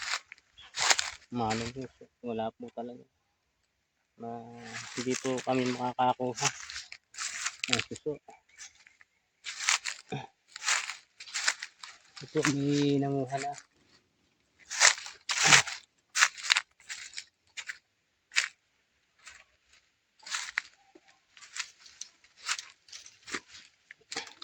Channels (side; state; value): both; identical; correlation 1.00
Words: Manong po, wala po talaga. Hindi po kami makakakuha ng suso. Ito may nanguha na.